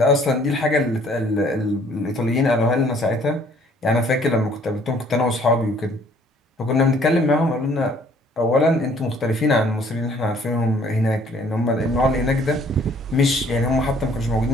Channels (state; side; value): normal; both; correlation 0.59